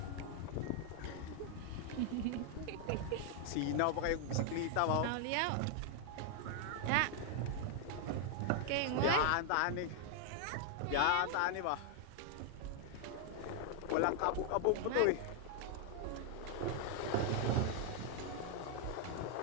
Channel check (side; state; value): both; different; correlation 0.00